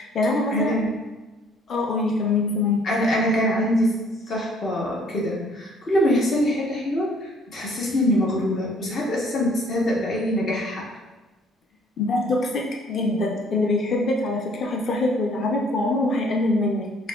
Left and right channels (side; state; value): both; normal; correlation 0.59